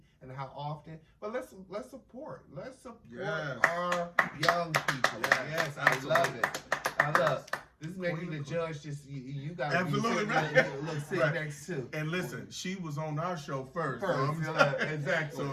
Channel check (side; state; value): both; identical; correlation 1.00